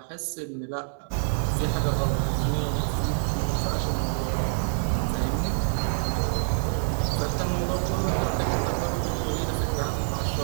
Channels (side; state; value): left; silent; 61 dB below the other